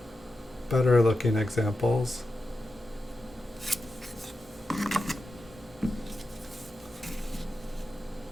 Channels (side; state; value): both; normal; correlation 0.90